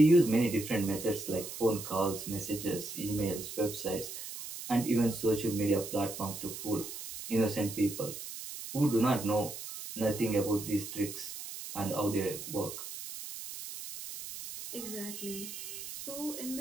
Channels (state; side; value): noise; right; hiss, 9 dB below the sound